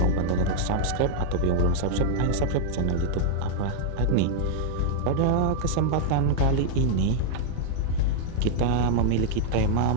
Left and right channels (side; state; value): both; different; correlation -0.01